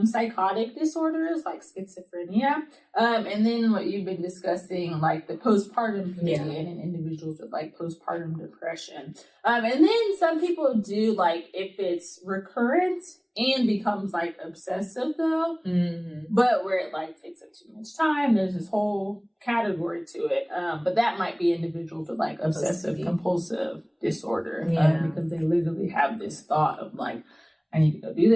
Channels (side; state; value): both; identical; correlation 1.00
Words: psychotic disorders, like schizophrenia, and then what you've been discussing, like the postpartum period in individuals with like postpartum depression. And then some people do, like, if it's recurrent and becomes like obsessive though, but where it like takes up too much time, there's this whole category to it. But that might be individuals with like obsessive compulsive disorder, because they literally have this thought of like, I need to go do